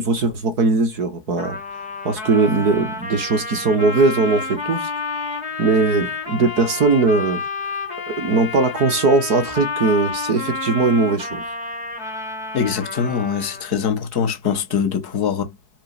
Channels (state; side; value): late; left; 4.7 ms